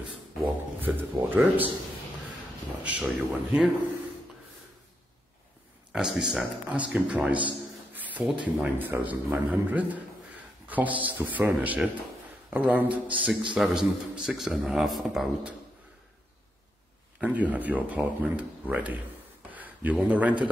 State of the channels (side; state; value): both; normal; correlation 0.82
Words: fitted wardrobes. I'll show you one here. As we said, asking price 49,900, costs to furnish it around 6,000, 6.5 about, and you have your apartment ready. You want to rent it